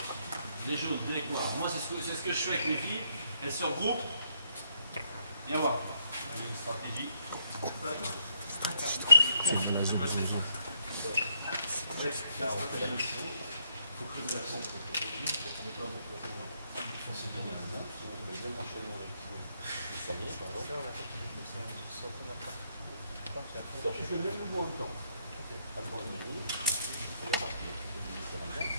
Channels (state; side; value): inverted; both; correlation -0.72